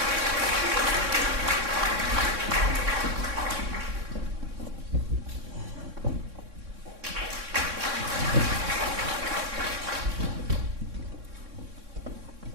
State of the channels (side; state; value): left; late; 3.6 ms